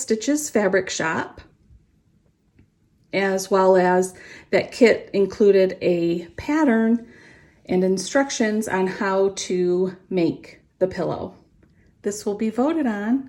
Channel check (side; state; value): both; identical; correlation 1.00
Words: Fabric Shop, as well as that kit included a pattern and instructions on how to make the pillow. This will be voted